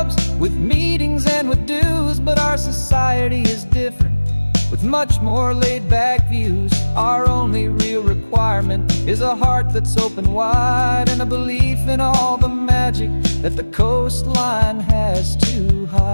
with meetings and with dues, but our society is different with much more laid-back views. Our only real requirement is a heart that's open wide and a belief in all the magic that the coastline has to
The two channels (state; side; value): inverted; both; correlation -1.00